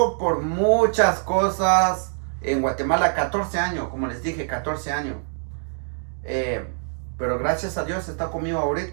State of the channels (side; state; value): left; silent; 63 dB below the other